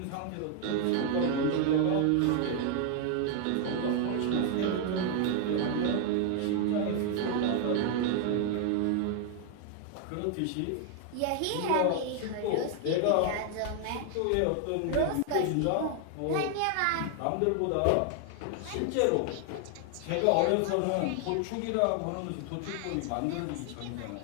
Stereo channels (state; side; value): different; both; correlation 0.00